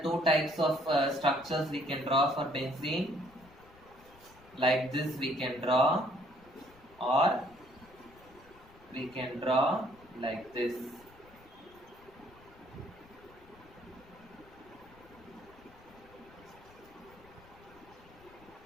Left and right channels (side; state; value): left; noise; rumble, 24 dB below the sound